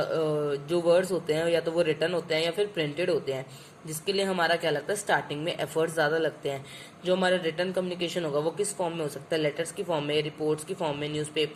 वर्ड्स होते हैं या तो वो रिटर्न होते हैं या फिर प्रिंटेड होते हैं, जिसके लिए हमारा क्या लगता है स्टार्टिंग में एफर्ट्स ज़्यादा लगते हैं. जो हमारा रिटर्न कम्युनिकेशन होगा वो किस फॉर्म में हो सकता है, लेटर्स की फॉर्म में, रिपोर्ट्स की फॉर्म में,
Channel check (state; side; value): identical; both; correlation 1.00